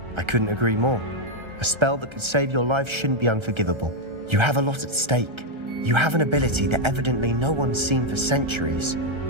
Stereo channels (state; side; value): late; left; 1.3 ms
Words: I couldn't agree more. A spell that could save your life shouldn't be unforgivable. You have a lot at stake. You have an ability that evidently no one's seen for centuries.